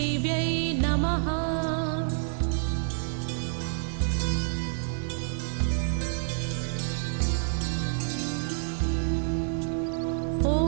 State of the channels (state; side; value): silent; left; 59 dB below the other